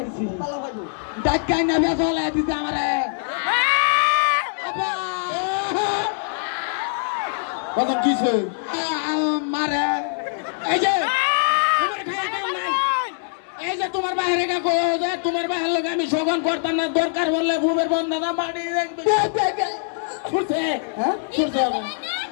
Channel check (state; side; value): silent; right; 64 dB below the other